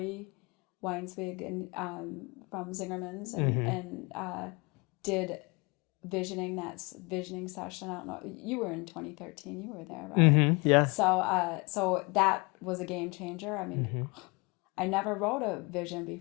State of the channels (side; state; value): right; quieter; 27.7 dB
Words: Weinswig and from Zingerman's and did visioning session. I don't know. You were in 2013. You were there, right? Mm-hmm. Yeah. So that was a game changer. I mean, I never wrote a vision